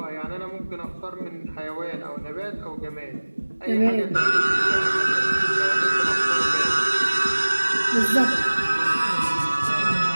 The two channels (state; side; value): inverted; both; correlation -1.00